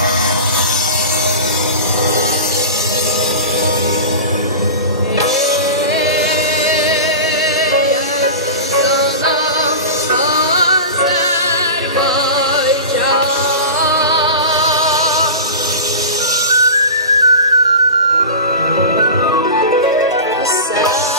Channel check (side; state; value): both; inverted; correlation -0.30